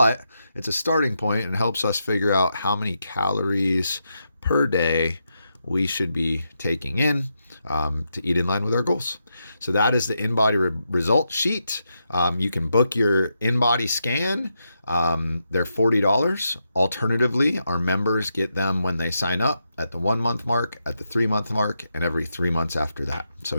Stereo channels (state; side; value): inverted; both; correlation -0.84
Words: it's a starting point and helps us figure out how many calories per day we should be taking in to eat in line with our goals. So that is the InBody result sheet. You can book your InBody scan. They're $40. Alternatively, our members get them when they sign up at the 1 month mark, at the 3 month mark, and every 3 months after that. So